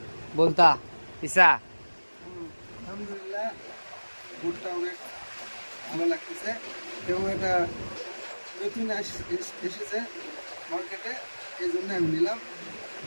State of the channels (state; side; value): inverted; both; correlation -1.00